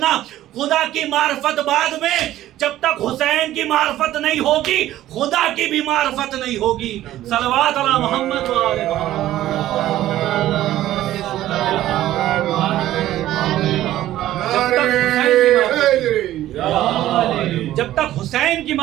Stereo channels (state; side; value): quieter; left; 13.9 dB